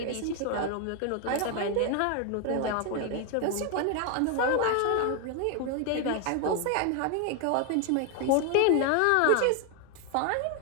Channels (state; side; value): different; both; correlation 0.01